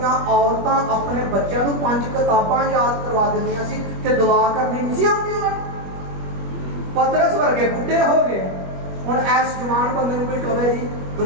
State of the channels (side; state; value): left; late; 21 ms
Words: औरतां अपने बच्चों को 5 किताबां याद करवा दिंदियां सी ते दुआ करनी नहीं सी आउंदी उन्हां नूं। पतरस वर्गे बुढ़े हो गए, हुण ऐस जवान बंदे नूं कोई कहे जी